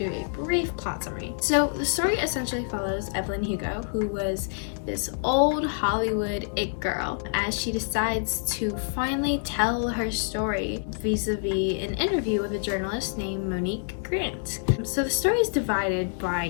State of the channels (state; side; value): silent; right; digital silence